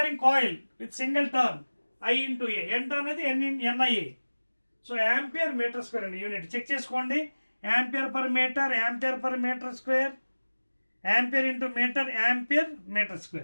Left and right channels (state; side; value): inverted; both; correlation -1.00